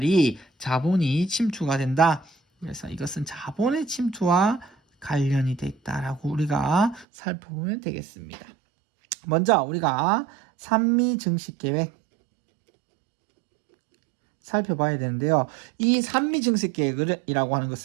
자본이 침투가 된다. 그래서 이것은 자본의 침투와 관련이 돼 있다라고 우리가 살펴보면 되겠습니다. 먼저 우리가 산미 증식 계획 살펴봐야 되는데요. 이 산미 증식 계획이라고 하는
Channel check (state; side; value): drops out; left; at 7.1 s